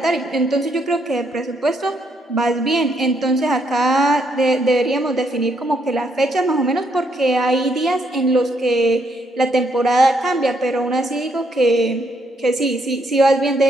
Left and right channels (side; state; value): both; normal; correlation 0.74